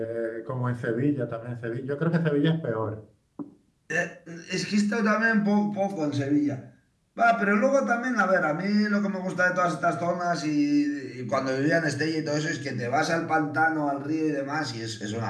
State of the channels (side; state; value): both; identical; correlation 1.00